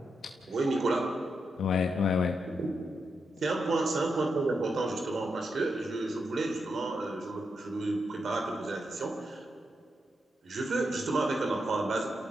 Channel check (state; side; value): normal; both; correlation 0.84